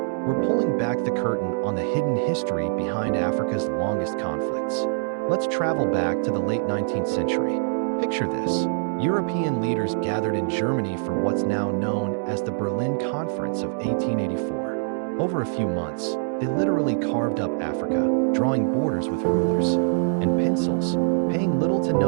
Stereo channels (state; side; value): silent; left; digital silence